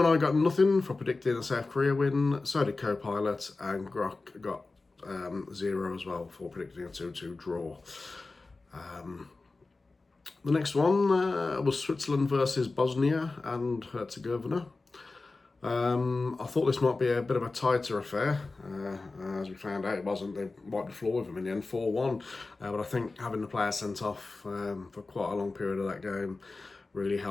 got nothing for predicting a South Korea win, so did Copilot, and Grok got 0 as well for predicting a 2-2 draw. The next one was Switzerland versus Bosnia and Herzegovina. I thought this might be a bit of a tighter affair. As we found out, it wasn't. They wiped the floor with them in the end, 4-1. But I think having the player sent off for quite a long period of that game really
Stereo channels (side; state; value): right; quieter; 3.6 dB